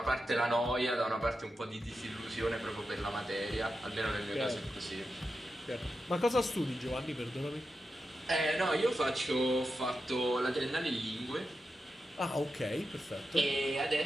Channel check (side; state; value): both; normal; correlation 0.89